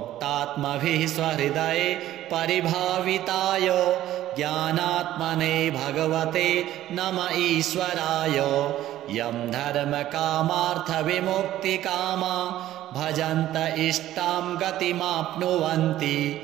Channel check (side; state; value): left; quieter; 13.6 dB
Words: स्वहृदये परिभाविताय ज्ञानात्मने भगवते नम ईश्वराय यं धर्मकामार्थविमुक्तिकामा भजन्त इष्टां गतिमाप्नुवन्ति